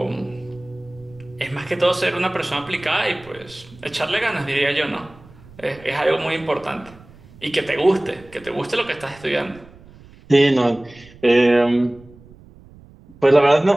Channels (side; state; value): right; noise; rumble, 23 dB below the sound